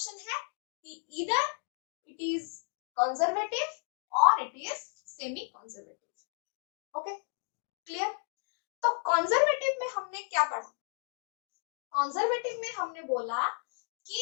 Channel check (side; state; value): right; silent; 56 dB below the other